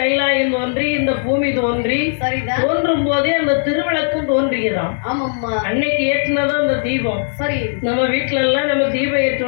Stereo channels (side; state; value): right; silent; 64 dB below the other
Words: தோன்றி, இந்த பூமி தோன்றி, சரிதான், தோன்றும் போதே அந்த திருவிளக்கும் தோன்றியதாம். ஆமாம்மா. அன்னைக்கு ஏற்றினதான் அந்த தீபம். சரி, நம்ம வீட்டுல எல்லாம் நம்ம தீபம்